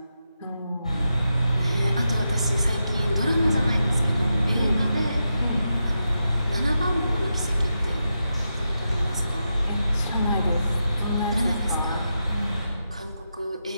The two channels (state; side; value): inverted; both; correlation -0.87